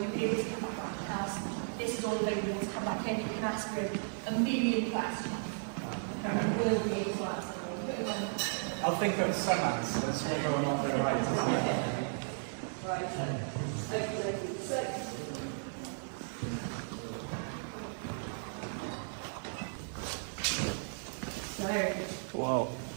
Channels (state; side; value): silent; left; digital silence